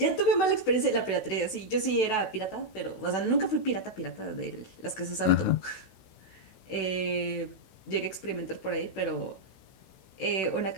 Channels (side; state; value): right; late; 16 ms